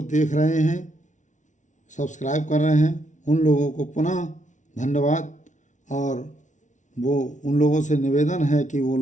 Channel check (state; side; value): late; right; 0.36 ms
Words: देख रहे हैं, सब्सक्राइब कर रहे हैं, उन लोगों को पुनः धन्यवाद। और वो उन लोगों से निवेदन है कि वो